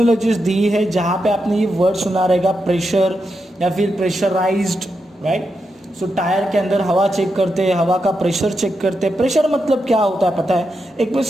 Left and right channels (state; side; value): normal; both; correlation 0.86